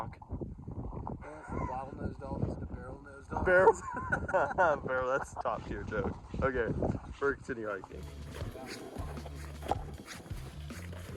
From bottlenose dolphins to barrel-nosed dolphins. Barrel. Barrel, that's a top tier joke. Okay, we're continue hiking.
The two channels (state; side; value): identical; both; correlation 1.00